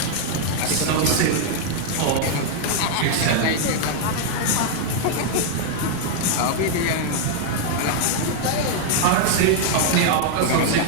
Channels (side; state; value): both; different; correlation 0.00